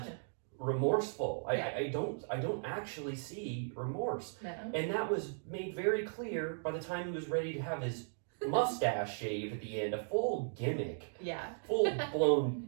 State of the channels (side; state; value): left; silent; digital silence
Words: remorseful. I don't actually see remorse. No. And that was made very clear by the time he was ready to have his mustache shaved at the end. A full gimmick. Yeah. Full blown